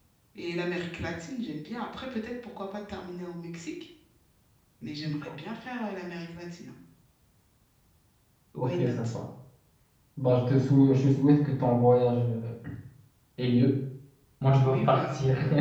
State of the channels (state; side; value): identical; both; correlation 1.00